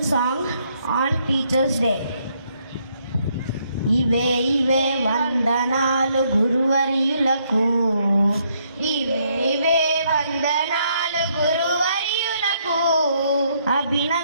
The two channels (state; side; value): inverted; both; correlation -0.72